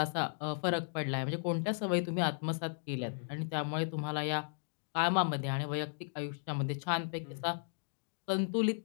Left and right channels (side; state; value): right; silent; digital silence